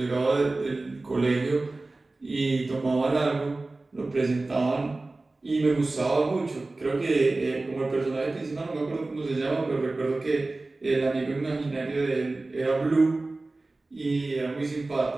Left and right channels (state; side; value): quieter; left; 3.2 dB